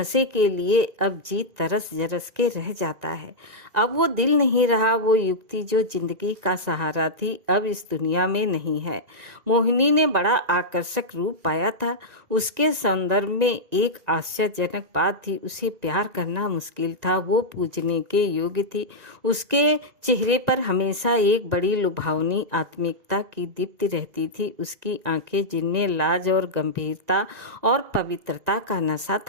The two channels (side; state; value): left; late; 1.9 ms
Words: के लिए अब जी तरस जरस के रह जाता है। अब वो दिल नहीं रहा, वो युक्ति जो जिंदगी का सहारा थी अब इस दुनिया में नहीं है। मोहिनी ने बड़ा आकर्षक रूप पाया था। उसके सौंदर्य में एक आश्चर्यजनक बात थी, उसे प्यार करना मुश्किल था। वो पूजने के योग्य थी। उसके चेहरे पर हमेशा एक बड़ी लुभावनी आत्मिकता की दीप्ति रहती थी। उसकी आंखें जिनमें लाज और गंभीरता और पवित्रता का नशा